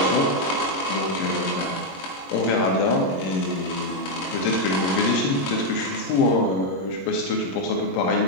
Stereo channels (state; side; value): late; right; 22 ms